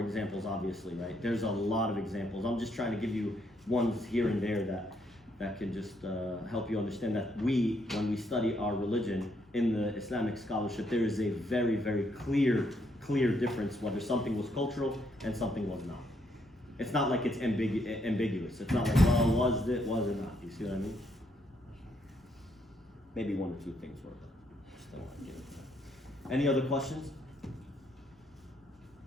obviously, right? There's a lot of examples. I'm just trying to give you ones here and there that can just help you understand that when we study our religion in the Islamic scholarship, there is a very, very clear difference whether something was cultural and something was not. It's not like it's ambiguous. It's not like, well, was it not? You see what I mean? Maybe one or two things were, but just don't want to give it to that. Any other questions?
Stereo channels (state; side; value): normal; both; correlation 0.74